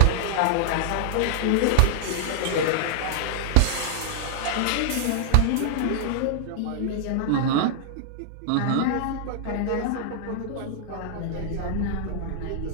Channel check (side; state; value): both; different; correlation -0.01